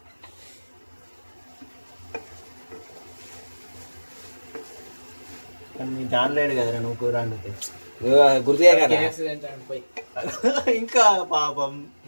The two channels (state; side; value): inverted; both; correlation -1.00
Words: నీ జానలేడు కదరా నువ్వు కూర వండితే. గుర్తుగా కదా ఇంకా పాపం